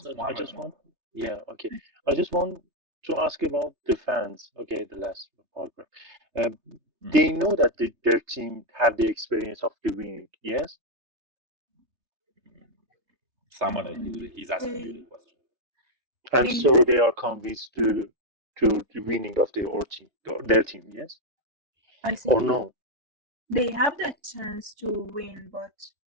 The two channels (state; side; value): late; left; 3.3 ms